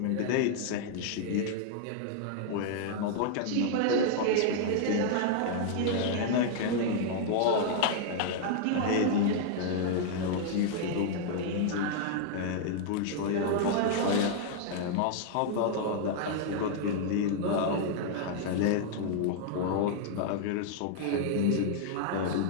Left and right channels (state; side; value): different; both; correlation -0.01